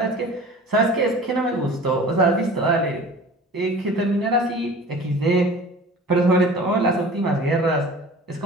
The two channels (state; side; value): normal; both; correlation 0.41